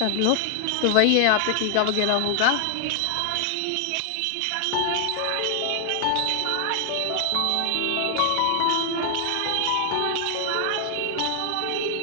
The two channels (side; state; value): both; different; correlation 0.00